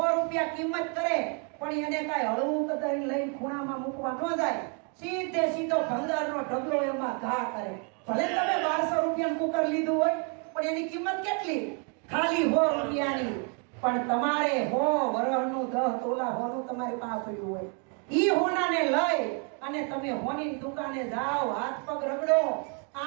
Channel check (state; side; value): quieter; left; 38.4 dB